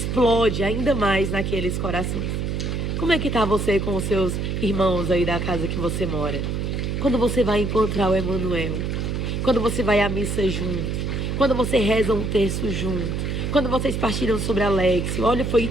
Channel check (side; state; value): right; noise; hum, 1 dB below the sound